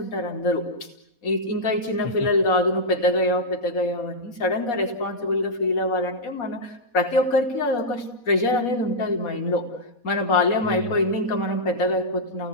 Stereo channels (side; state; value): right; late; 4.2 ms